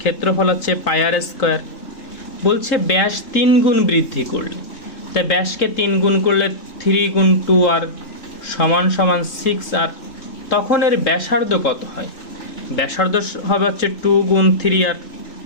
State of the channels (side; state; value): right; late; 3.7 ms